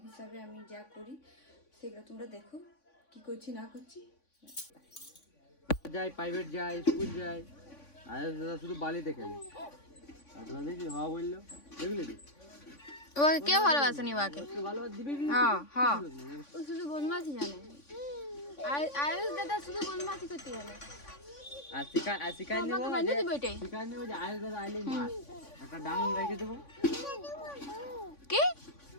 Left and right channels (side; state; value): right; late; 3.5 ms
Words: হিসাবে আমি যা করি সেগুলো তোমরা দেখো কি করছি না করছি। যাই প্রাইভেট যাই স্কুল যাই আর দাদা শুধু বালিতে খেলে আর তোরা দেখি হওয়া বললো দেখলি তুই ওকে কেউ ভালোবাসেনি ওকে, ভালোবাসা দিবি হ্যাঁ হ্যাঁ ও শুধু বদমাশি জানে, আয়ুষ দাদা শুধু বদমাশি করতে জানে। আর শিকার নেবো যে আয়ুষ দাদা আইলেই মার একটা ডাং রেখে দেবো। কি